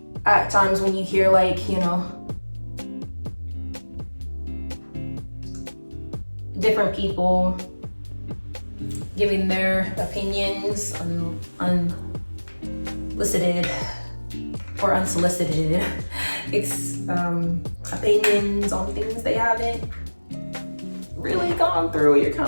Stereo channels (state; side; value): inverted; both; correlation -1.00